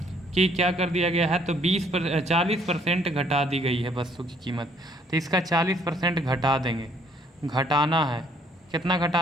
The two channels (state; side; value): normal; both; correlation 0.64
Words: कि क्या कर दिया गया है? तो 40% घटा दी गई है वस्तु की कीमत, तो इसका 40% घटा देंगे। घटाना है, कितना